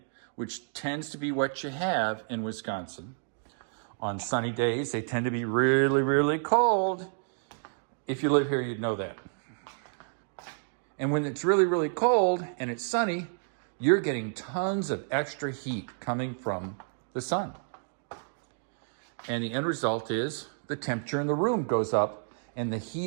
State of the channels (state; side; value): silent; left; digital silence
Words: which tends to be what you have in Wisconsin. On sunny days, they tend to be really, really cold. If you live here, you'd know that. And when it's really, really cold and it's sunny, you're getting tons of extra heat coming from the sun. And the end result is the temperature in the room goes up and the